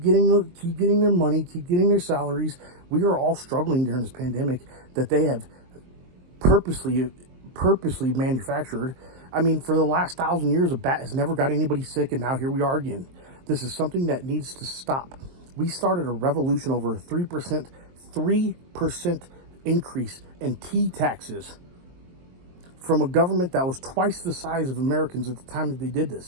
getting their money, keep getting their salaries. We are all struggling during this pandemic that they have purposely manufactured. I mean, for the last 1,000 years, a bat has never got anybody sick, and now here we are again. This is something that needs to stop. We started a revolution over a 3% increase in tea taxes from a government that was twice the size of Americans at the time that they did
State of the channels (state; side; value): late; left; 23 ms